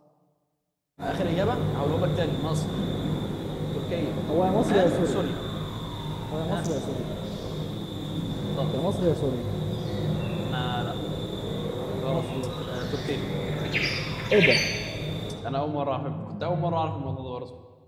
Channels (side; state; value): both; identical; correlation 1.00